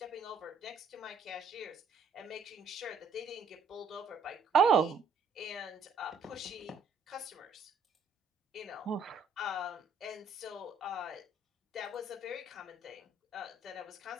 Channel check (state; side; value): quieter; left; 4.0 dB